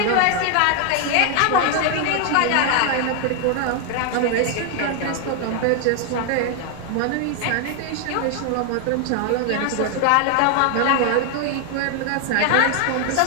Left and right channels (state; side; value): different; both; correlation 0.00